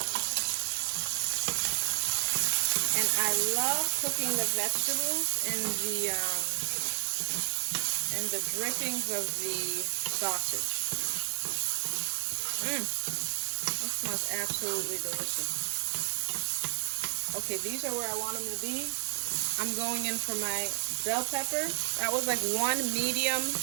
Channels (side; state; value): left; silent; digital silence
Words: And I love cooking the vegetables in the drippings of the sausage. That smells absolutely delicious. Okay, these are where I want them to be. I'm going in for my bell pepper. That was like one medium